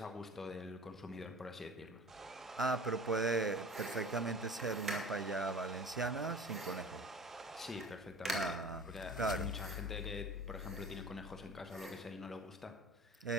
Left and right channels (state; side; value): normal; both; correlation 0.41